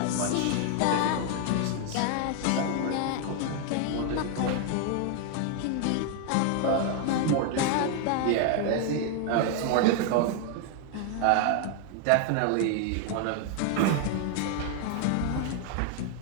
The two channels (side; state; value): both; different; correlation 0.00